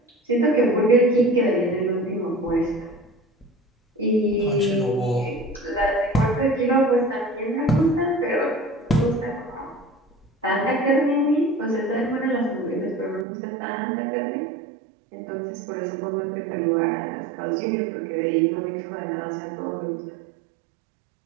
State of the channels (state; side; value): drops out; left; at 13.2 s